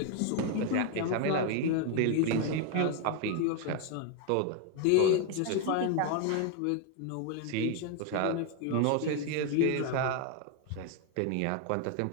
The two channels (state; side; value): different; both; correlation 0.01